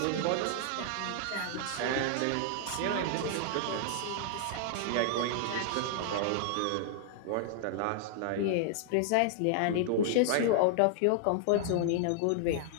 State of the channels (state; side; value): different; both; correlation -0.01